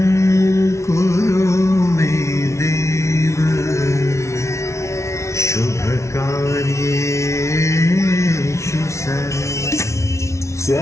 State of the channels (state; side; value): late; right; 0.14 ms